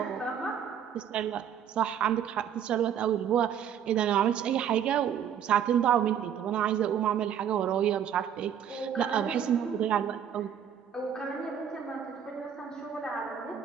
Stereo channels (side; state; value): left; quieter; 8.9 dB